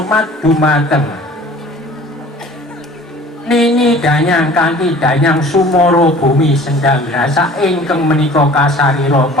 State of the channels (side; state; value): both; normal; correlation 0.47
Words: dumateng Nini Danyang kanthi Danyang Sumara Bumi Sendang Rasa ingkang menika kasarira